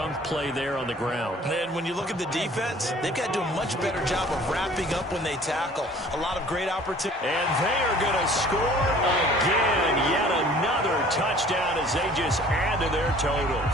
play there on the ground. And when you look at the defense, they've got to do a much better job of wrapping up when they tackle. A lot of great opportunities. And they are going to score again. Yet another touchdown as they just add to their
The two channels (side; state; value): both; normal; correlation 0.51